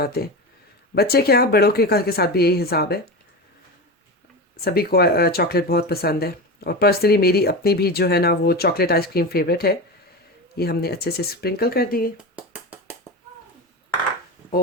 हैं। बच्चे क्या, बड़ों के साथ भी यही हिसाब है, सभी को चॉकलेट बहुत पसंद है। और पर्सनली मेरी अपनी भी जो है ना वो चॉकलेट आइसक्रीम फेवरेट है। ये हमने अच्छे से स्प्रिंकल कर दिए,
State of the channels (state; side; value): normal; both; correlation 0.23